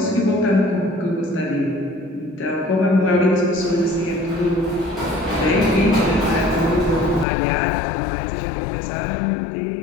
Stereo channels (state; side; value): drops out; right; at 7.2 s